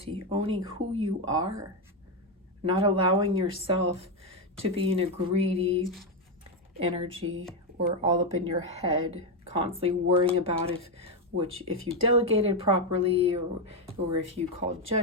owning who you are, not allowing yourself to be in a greedy energy or all up in your head, constantly worrying about if you delegated properly or if you called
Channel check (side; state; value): both; normal; correlation 0.06